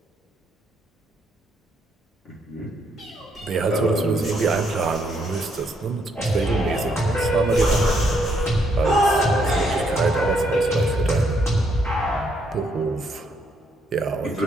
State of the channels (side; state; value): both; normal; correlation 0.74